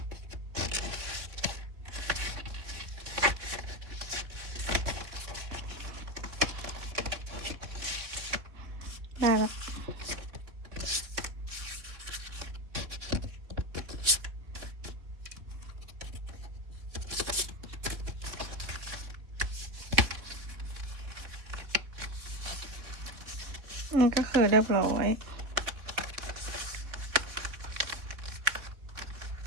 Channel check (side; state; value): left; late; 3.7 ms